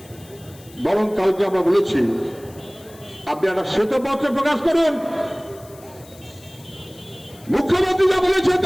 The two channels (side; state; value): left; noise; hiss, 23 dB below the sound